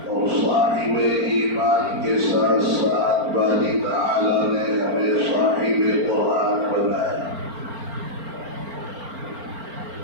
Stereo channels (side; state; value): left; late; 4.4 ms